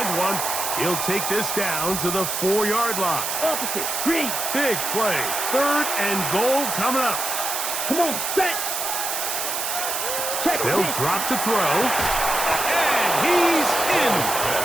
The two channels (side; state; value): right; noise; hiss, 2 dB below the sound